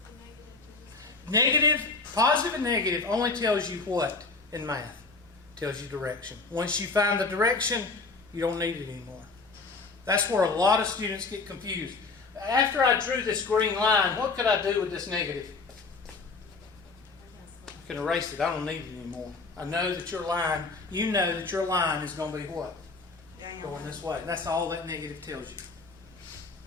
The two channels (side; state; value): right; quieter; 4.0 dB